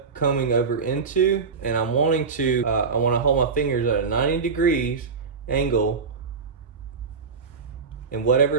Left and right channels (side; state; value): left; quieter; 5.1 dB